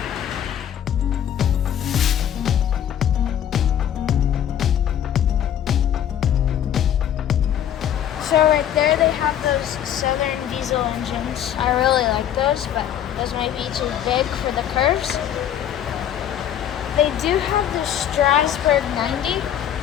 So right there they have those Southern diesel engines. I really like those, but those might be too big for the curves. They do have the Strasbourg 90,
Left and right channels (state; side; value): quieter; right; 10.2 dB